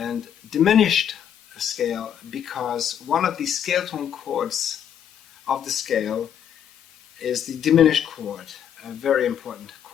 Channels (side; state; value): right; quieter; 9.1 dB